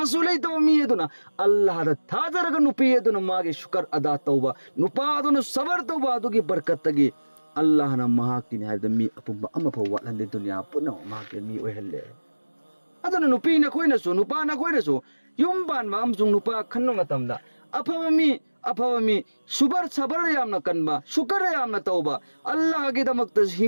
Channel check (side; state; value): both; inverted; correlation -1.00